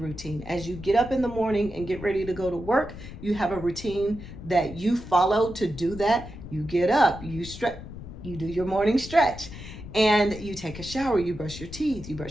As you get up in the morning and get ready to go to work, you have a routine that you follow to do that. You get up, you stretch, you do your morning stretch, and you take a shower, you brush your teeth, you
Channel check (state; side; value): noise; left; rumble, 12 dB below the sound